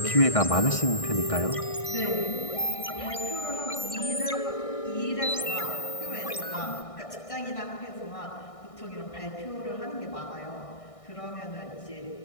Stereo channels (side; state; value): right; late; 1.6 ms